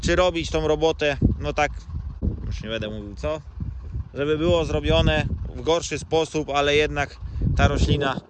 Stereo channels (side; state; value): both; identical; correlation 1.00